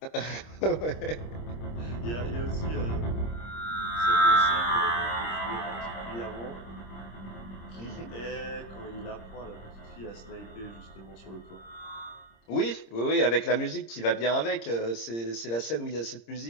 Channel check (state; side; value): late; right; 26 ms